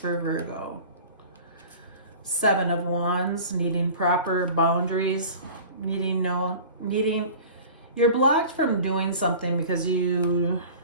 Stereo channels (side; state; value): both; inverted; correlation -0.40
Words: Virgo? Seven of Wands, needing proper boundaries, you're blocked from doing something because you